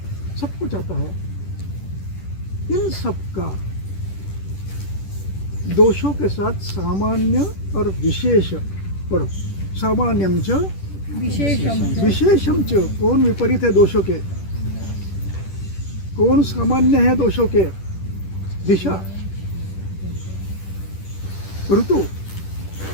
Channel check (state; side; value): late; right; 10 ms